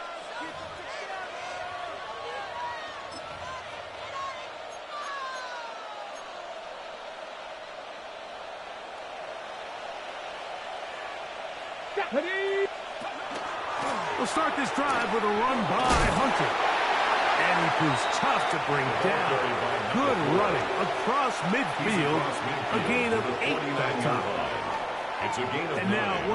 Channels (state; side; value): identical; both; correlation 1.00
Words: We'll start this drive with a run by Hunter. And he proves tough to bring down. Good running across midfield. A gain of 8 that time. And now at